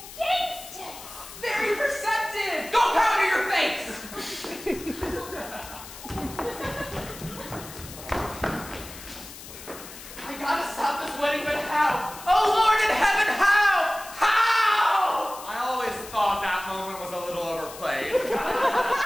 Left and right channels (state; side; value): noise; left; hiss, 15 dB below the sound